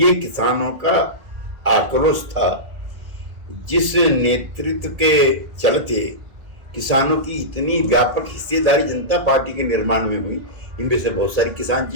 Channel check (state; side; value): late; left; 2.0 ms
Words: किसानों का आक्रोश था, जिस नेतृत्व के चलते किसानों की इतनी व्यापक हिस्सेदारी जनता पार्टी के निर्माण में हुई। इनमें से बहुत सारी किसान